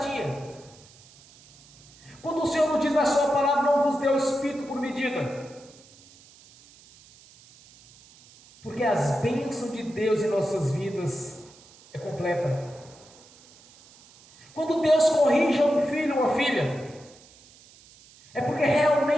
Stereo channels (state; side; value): noise; right; hiss, 25 dB below the sound